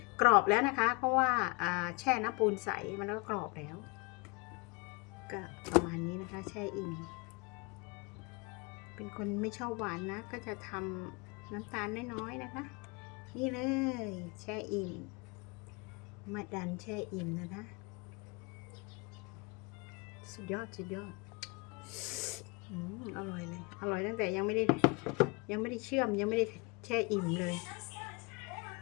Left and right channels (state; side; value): quieter; right; 28.9 dB